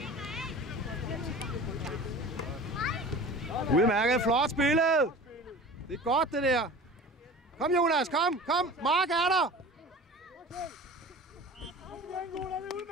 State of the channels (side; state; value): both; normal; correlation 0.39